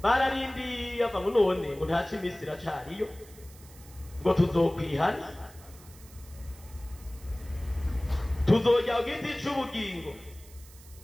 bararindiye ava ngo none ngo ntaca iminsi iracariyo ngo tuzokwihana tuzojya ku giti c'ubugingo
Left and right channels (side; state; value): right; noise; hiss, 22 dB below the sound